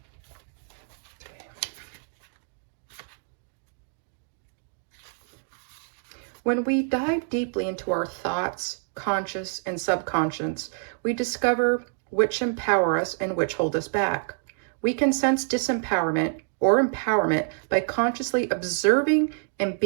When we dive deeply into our thoughts, conscious and subconscious, we discover which empower us and which hold us back. We can sense disempowerment or empowerment by consciously observing and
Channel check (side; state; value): left; silent; digital silence